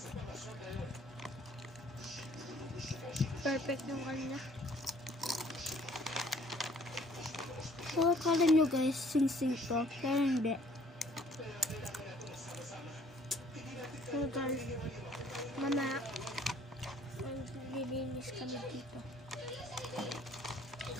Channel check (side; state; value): both; normal; correlation 0.58